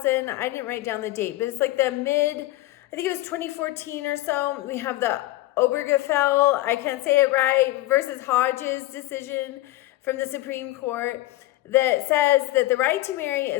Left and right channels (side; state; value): right; quieter; 17.4 dB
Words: I didn't write down the date, but it's like I think it was 2014 or so, we have the Obergefell, I can't say it right, versus Hodges decision from the Supreme Court that says that the right to marry